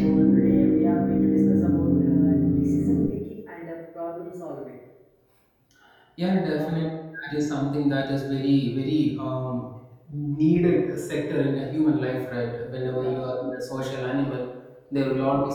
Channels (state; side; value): identical; both; correlation 1.00